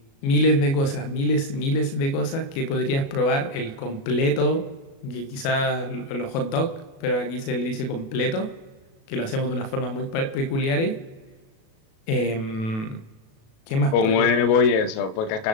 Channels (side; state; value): right; late; 37 ms